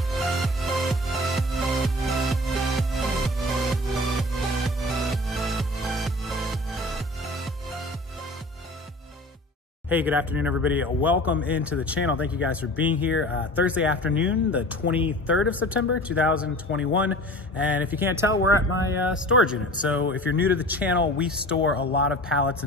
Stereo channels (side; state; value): both; normal; correlation 0.40